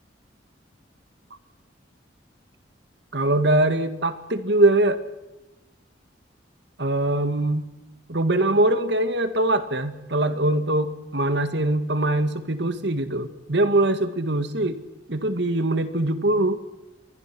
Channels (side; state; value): both; normal; correlation 0.20